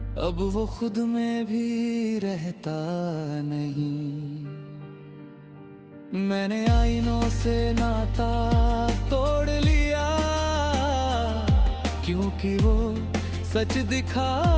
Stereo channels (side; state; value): both; identical; correlation 1.00